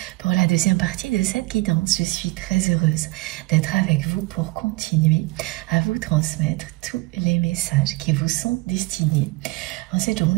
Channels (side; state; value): left; quieter; 22.2 dB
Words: pour la deuxième partie de cette guidance. Je suis très heureuse d'être avec vous pour continuer à vous transmettre tous les messages qui vous sont destinés en cette